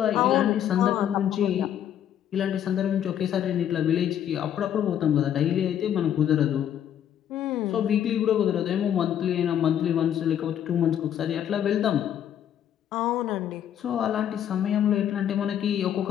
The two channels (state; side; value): quieter; right; 10.1 dB